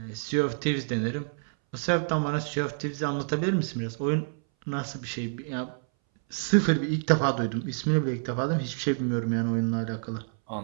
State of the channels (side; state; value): left; silent; 59 dB below the other